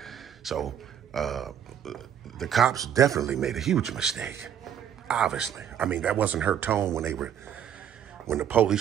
So the cops definitely made a huge mistake. Obviously. I mean, that wasn't her tone when the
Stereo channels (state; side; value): quieter; left; 9.3 dB